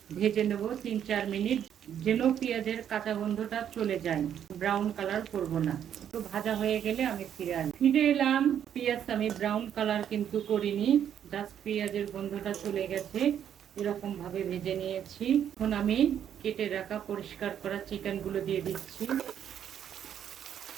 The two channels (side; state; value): left; quieter; 9.4 dB